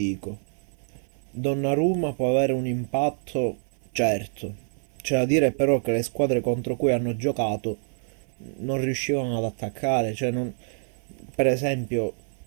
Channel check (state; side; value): silent; left; 56 dB below the other